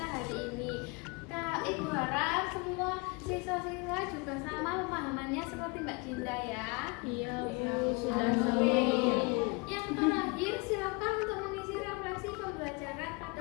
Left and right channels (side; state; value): right; quieter; 28.9 dB